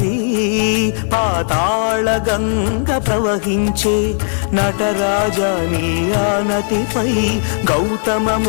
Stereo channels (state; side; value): silent; right; digital silence